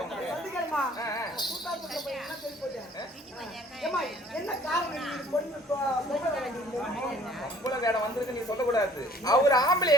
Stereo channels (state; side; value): normal; both; correlation 0.55